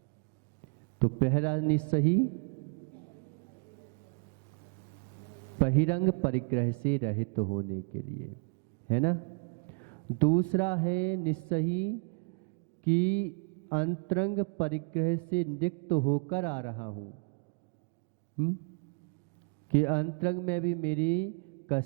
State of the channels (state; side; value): quieter; left; 39.4 dB